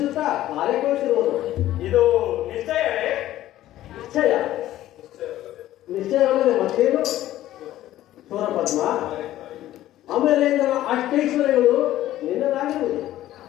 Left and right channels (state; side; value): quieter; right; 14.0 dB